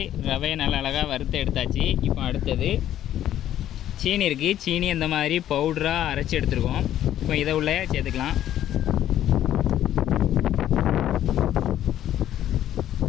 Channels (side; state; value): right; quieter; 11.8 dB